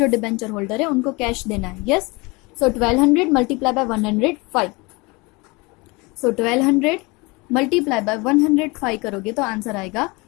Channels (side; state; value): right; quieter; 25.9 dB